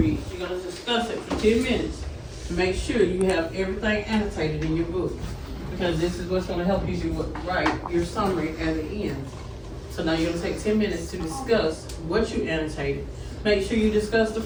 you're gonna discuss it for 10 minutes to make sure you have everything annotated in your book. Because this is what's gonna help you do write your summary at the end. So now you're gonna take 10 minutes to discuss what you annotated. Make sure you discuss the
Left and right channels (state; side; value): identical; both; correlation 1.00